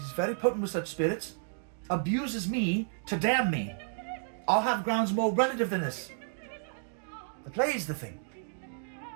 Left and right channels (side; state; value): left; silent; digital silence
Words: very potent with such spirits, abuses me to damn me. I'll have grounds more relative than this. The play's the thing.